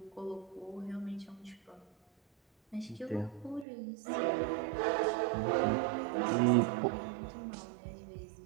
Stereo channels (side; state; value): left; drops out; at 3.7 s